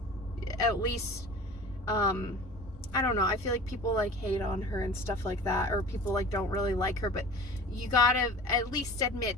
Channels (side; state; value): right; noise; rumble, 17 dB below the sound